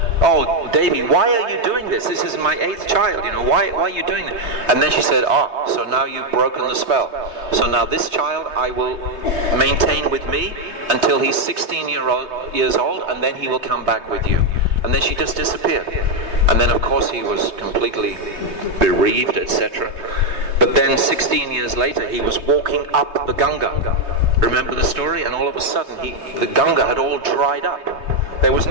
oh, Devi, why are you doing this? This is my 8th child, why are you doing this? And then she said, so now you've broken the spell. So now this child I will maintain with me until he's 16 years old, and then he will come back with you. And then she just disappeared. And then of course he was completely bereaved, etc. But then 16 years later he was walking up the Ganga. Remember the story? And all of a sudden the Ganga had all dried up. There was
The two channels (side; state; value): left; late; 3.3 ms